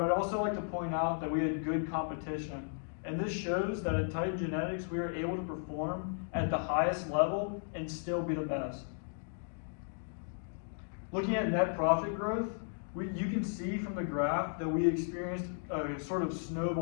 I'd also like to point out that we had good competition. And this shows that at Titan Genetics, we are able to perform at the highest level and still be the best. Looking at net profit growth, you can see from the graph that we experienced a sort of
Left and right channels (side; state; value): right; silent; digital silence